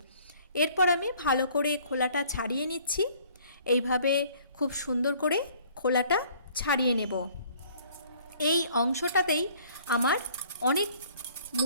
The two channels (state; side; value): inverted; both; correlation -0.57